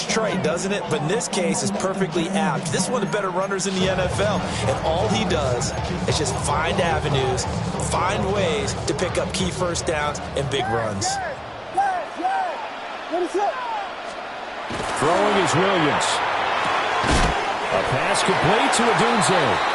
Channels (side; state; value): both; identical; correlation 1.00